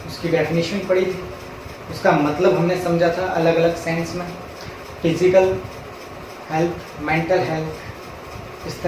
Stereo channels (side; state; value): both; identical; correlation 1.00